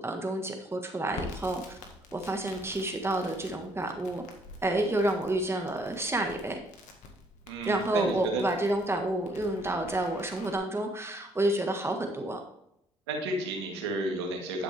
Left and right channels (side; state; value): both; normal; correlation 0.65